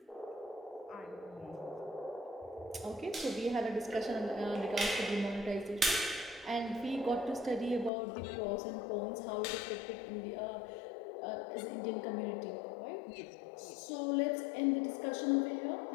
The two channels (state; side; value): drops out; right; at 7.9 s